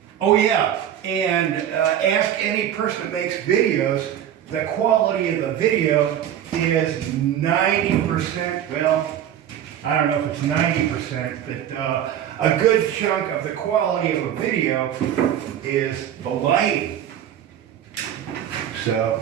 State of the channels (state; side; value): quieter; left; 10.3 dB